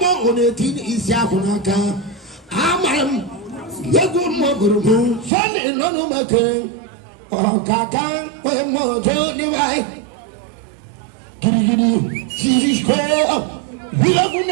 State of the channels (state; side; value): drops out; left; at 5.3 s